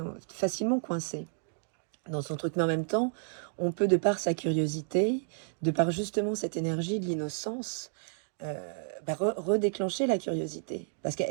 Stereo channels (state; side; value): silent; left; digital silence